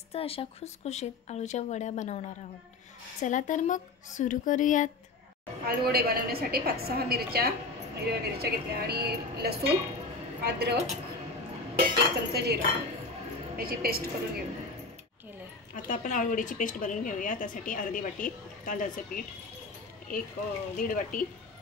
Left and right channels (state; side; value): quieter; right; 3.5 dB